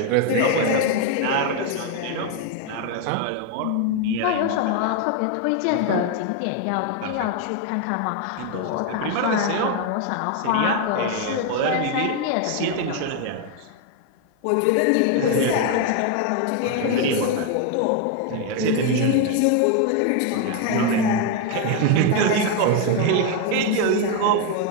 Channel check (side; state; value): both; different; correlation 0.01